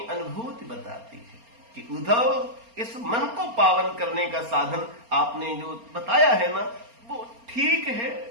अनुभूति बताती है कि उद्धव इस मन को पावन करने का साधन आपने जो बताया है ना वो ठीक है,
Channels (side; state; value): left; late; 4.3 ms